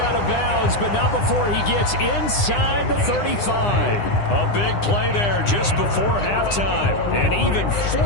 of bounds, but not before he gets inside the 35. A big play there just before halftime. And even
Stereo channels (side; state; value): right; late; 9.8 ms